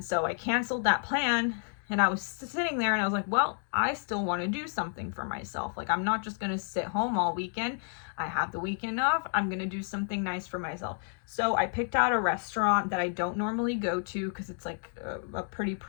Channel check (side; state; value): right; silent; 57 dB below the other